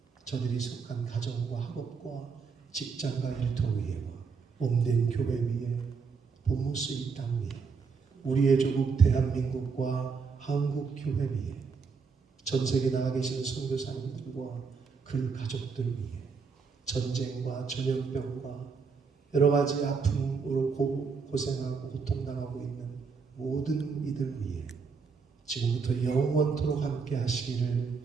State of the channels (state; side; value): quieter; left; 5.3 dB